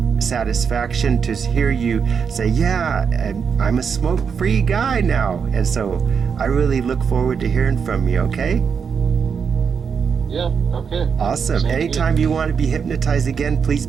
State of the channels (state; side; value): quieter; left; 6.4 dB